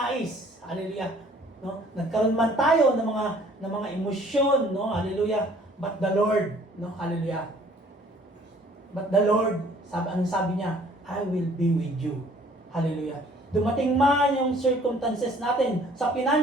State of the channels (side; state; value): both; normal; correlation 0.56